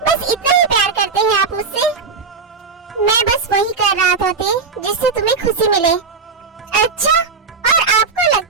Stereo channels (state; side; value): quieter; left; 4.9 dB